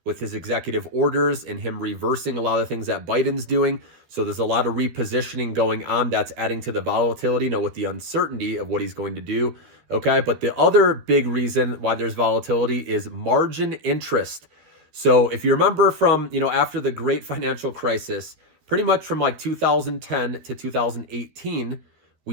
with his executive orders and him reversing a lot of things that Biden's doing. So there's a lot of repositioning going on that's adding to the volatility, with the uncertainty of what he's going to do. Okay, but the other big reason why there's volatility is margin interest. So if you remember from, after the great financial crisis, pretty much from like 2010 to 2018,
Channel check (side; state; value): left; late; 13 ms